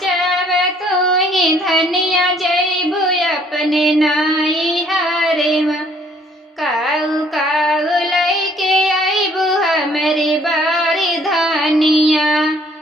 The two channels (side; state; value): both; normal; correlation 0.61